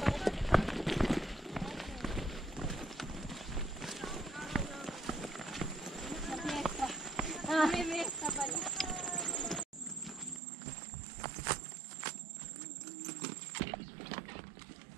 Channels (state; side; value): drops out; left; at 10.4 s